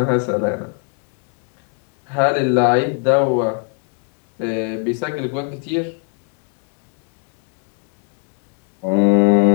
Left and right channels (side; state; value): right; quieter; 37.6 dB